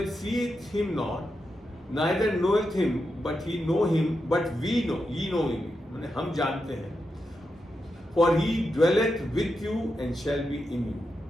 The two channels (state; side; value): normal; both; correlation 0.87